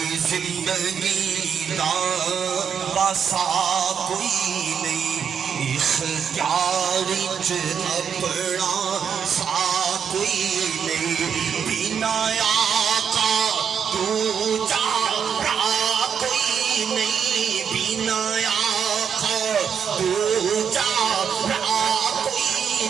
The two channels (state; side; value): quieter; left; 7.4 dB